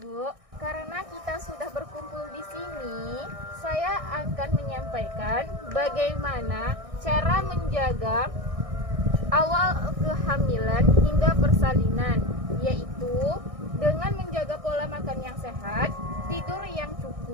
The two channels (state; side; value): late; left; 1.6 ms